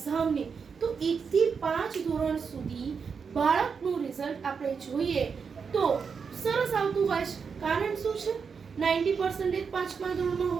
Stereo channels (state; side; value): quieter; left; 5.9 dB